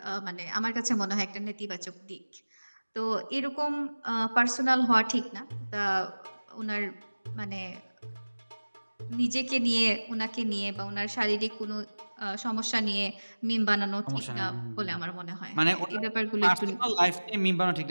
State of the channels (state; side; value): inverted; both; correlation -1.00